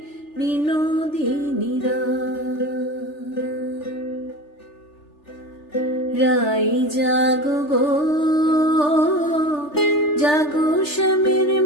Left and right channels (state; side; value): late; right; 3.4 ms